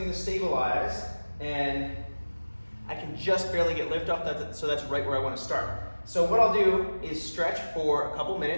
to stabilize, and I can just barely get lift off, so that's right where I wanna start. So what I'll do is stretch for a couple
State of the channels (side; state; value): both; inverted; correlation -1.00